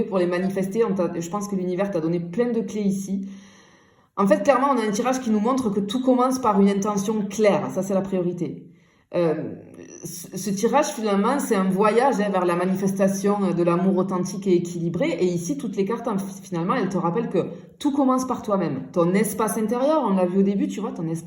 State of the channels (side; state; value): both; identical; correlation 1.00